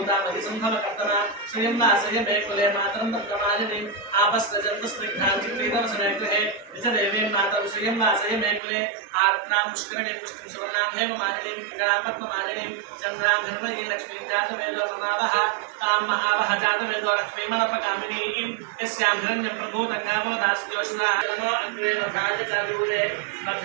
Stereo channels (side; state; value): left; drops out; at 8.6 s